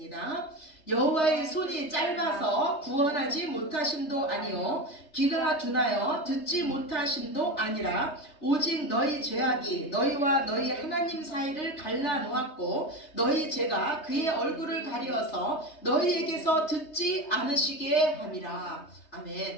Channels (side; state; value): right; late; 3.2 ms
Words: 여호와의 손이 짧아서 구원하지 못하심도 아니요 귀가 둔하여 듣지 못하심도 아니라 오직 너희 죄악이 너희와 너희 하나님 사이를 갈라놓았고 너희 죄가 그의 얼굴을 가리어서 너희에게서 듣지 않으시게 함이라.